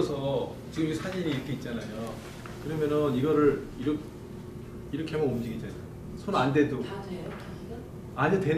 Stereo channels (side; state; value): both; identical; correlation 1.00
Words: 지금 이 사진이 이렇게 있잖아요. 그러면은 이거를 이렇게 하면 움직이잖아요. 손 안 대도 다 돼요? 기기가? 안에